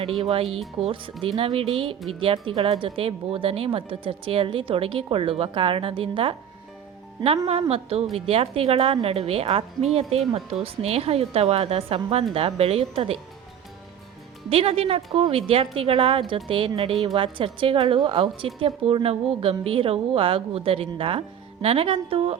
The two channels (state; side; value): quieter; left; 8.9 dB